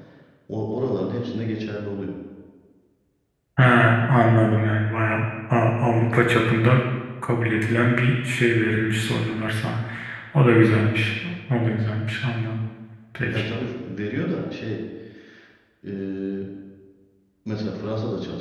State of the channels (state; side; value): identical; both; correlation 1.00